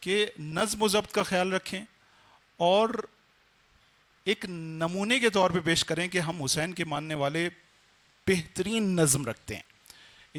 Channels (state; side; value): identical; both; correlation 1.00